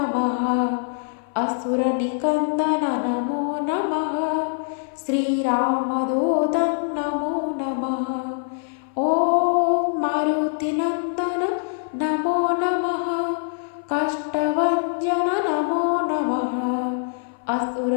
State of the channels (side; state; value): right; silent; 58 dB below the other